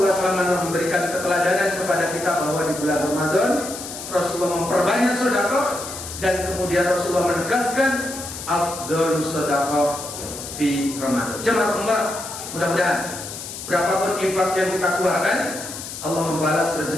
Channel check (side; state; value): left; noise; hiss, 10 dB below the sound